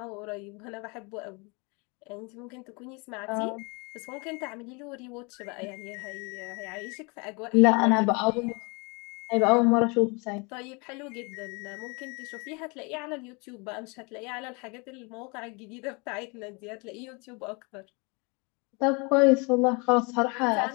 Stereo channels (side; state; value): right; quieter; 30.4 dB